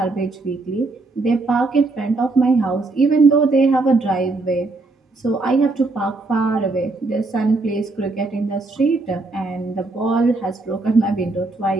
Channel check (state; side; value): quieter; left; 3.4 dB